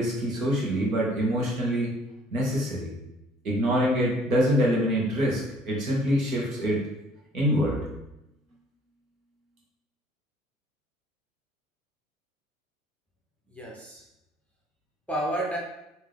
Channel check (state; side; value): normal; both; correlation 0.58